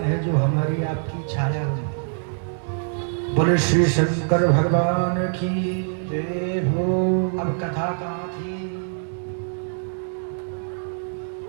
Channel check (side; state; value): left; silent; digital silence